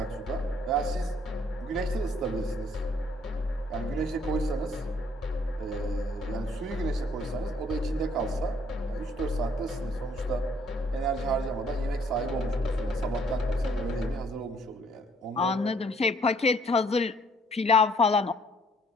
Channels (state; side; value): normal; both; correlation 0.63